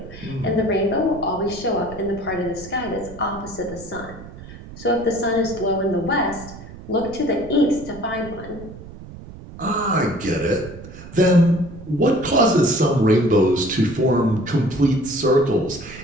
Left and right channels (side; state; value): right; noise; rumble, 15 dB below the sound